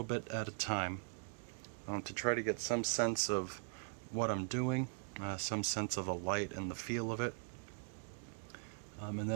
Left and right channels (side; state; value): left; silent; 51 dB below the other